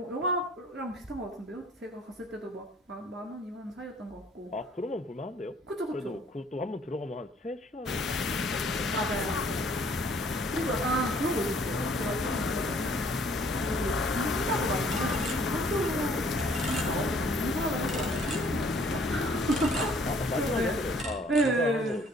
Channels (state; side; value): normal; both; correlation 0.59